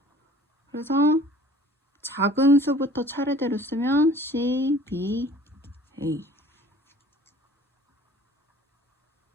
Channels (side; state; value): both; normal; correlation 0.49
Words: 그래서 작은 수부터 차례대로 쓰면 C, B, A.